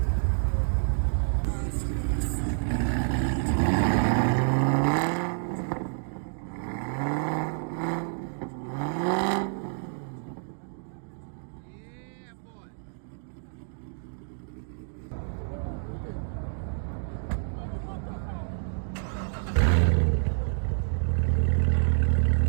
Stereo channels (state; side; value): silent; left; digital silence